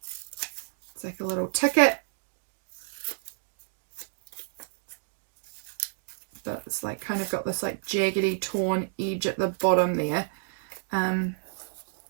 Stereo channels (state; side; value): silent; left; digital silence